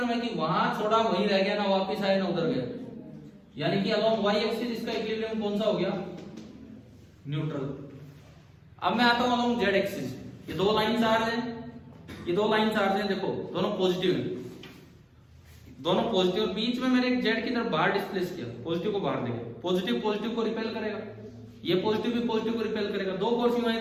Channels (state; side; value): identical; both; correlation 1.00